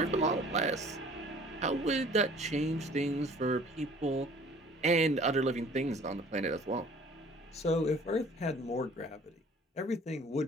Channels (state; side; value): normal; both; correlation 0.51